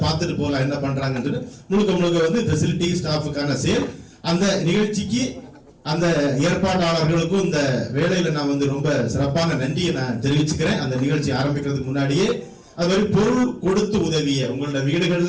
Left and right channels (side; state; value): both; identical; correlation 1.00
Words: பார்த்துட்டு போகலாம் என்ன பண்றாங்கன்னு. முழுக்க ஃபெசிலிட்டி ஸ்டாஃபுக்கான சேல். அந்த நிகழ்ச்சிக்கு அந்த ஏற்பாட்டாளர்களுக்கும் இந்த வேலையில நான் ரொம்ப சிறப்பான நன்றியை நான் தெரிவிச்சுக்கிறேன். அந்த நிகழ்ச்சி ஆரம்பிக்கிறதுக்கு முன்னாடியே அது மாதிரி பொருள் கொடுத்து உதவிய உங்களோட